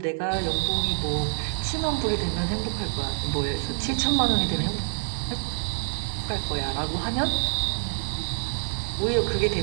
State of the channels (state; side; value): silent; left; 57 dB below the other